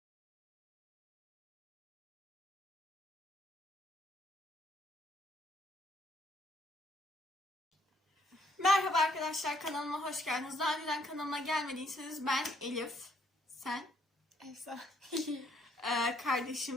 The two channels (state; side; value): normal; both; correlation 0.68